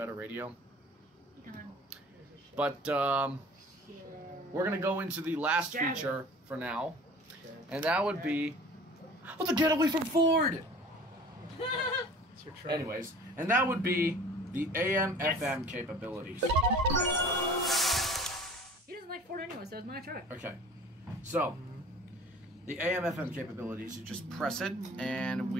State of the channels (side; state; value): both; normal; correlation 0.45